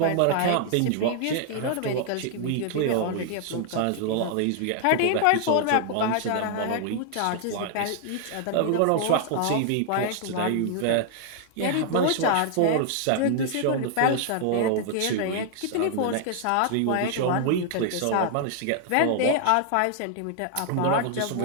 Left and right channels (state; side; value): different; both; correlation 0.00